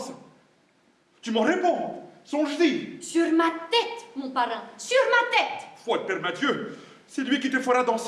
Tu m'en réponds, songe-y. Sur ma tête, mon parrain, sur ma tête. Foi de Père Mathieu, c'est lui qui te fera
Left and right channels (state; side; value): identical; both; correlation 1.00